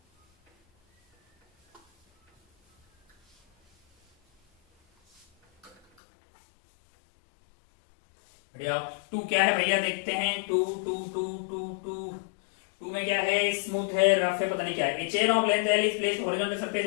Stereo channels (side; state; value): right; drops out; at 5.8 s